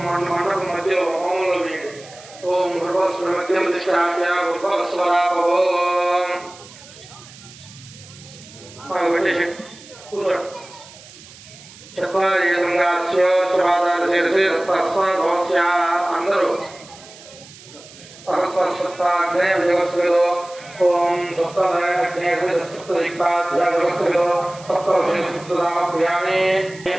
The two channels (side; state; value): right; noise; hiss, 20 dB below the sound